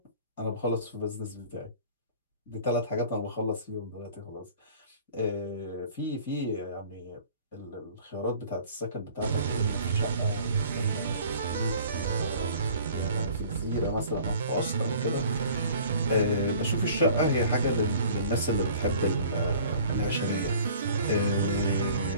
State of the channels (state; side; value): inverted; both; correlation -0.49